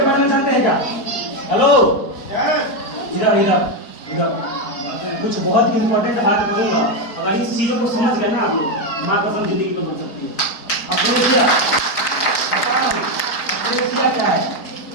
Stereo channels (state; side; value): late; right; 4.3 ms